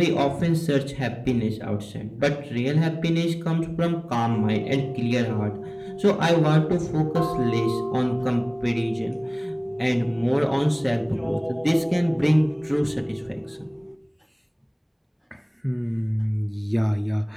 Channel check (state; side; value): identical; both; correlation 1.00